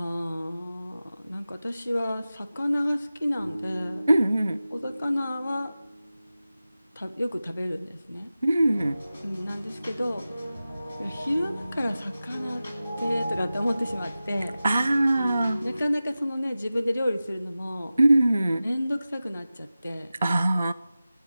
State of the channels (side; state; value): both; inverted; correlation -0.95